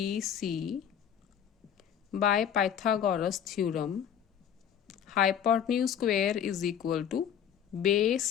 by Pythagoras theorem hypotenuse square is equal to base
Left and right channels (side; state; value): right; quieter; 8.8 dB